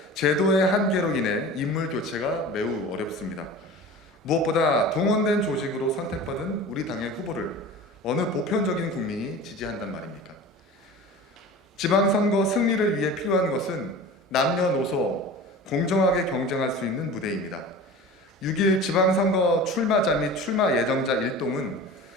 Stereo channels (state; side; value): normal; both; correlation 0.36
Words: 제도의 한계로 인해 인물 교체가 매우 어렵습니다. 무엇보다 동원된 조직으로 선택받은 우리 당의 후보를 어느 보편적인 국민이 지지한단 말입니까? 지방선거 승리를 위해 필요한 것은 남녀노소 공정하게 경쟁할 수 있는 무대입니다. 6.1 지방선거 출마자 및 출마 예정자 일동은